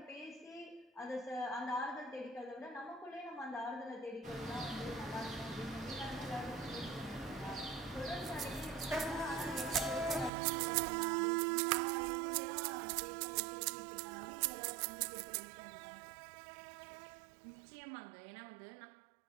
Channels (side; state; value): left; drops out; at 10.3 s